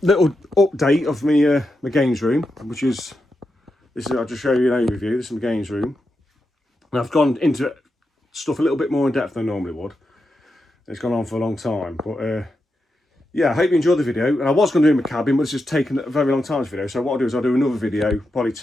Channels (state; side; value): normal; both; correlation 0.87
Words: little update of me my games room, which is this. I'll just show you an overview. This is my games room. And I've gone into stuff a little bit more in depth than I normally would. It's gone on for a long time, but yeah, I hope you enjoyed the video. And I was going to do my cabin, but it's just taken a very long time, this video. So what I'll do is I'll do another video probably